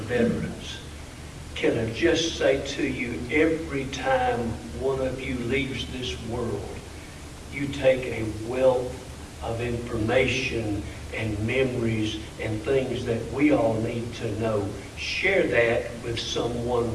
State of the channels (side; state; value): both; identical; correlation 1.00